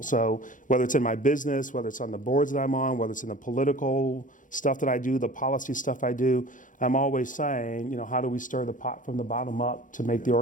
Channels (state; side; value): late; right; 0.38 ms